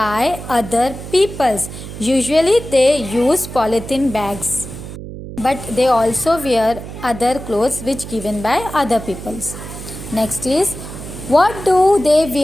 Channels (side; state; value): right; noise; hum, 11 dB below the sound